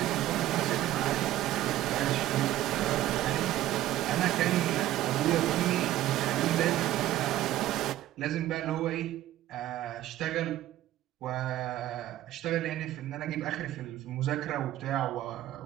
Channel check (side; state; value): left; quieter; 14.1 dB